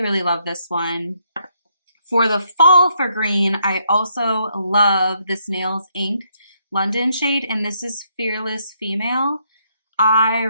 really love this one. For the fall for green, I also love this Nails Inc. London shade, and this is Fearless Female. I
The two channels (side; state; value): both; inverted; correlation -0.74